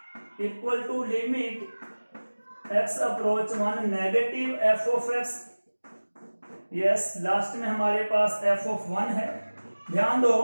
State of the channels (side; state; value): both; inverted; correlation -1.00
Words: equal to limit x approach 1 negative f of x, yes last में हमारे पास f ऑफ 1 है। ध्यान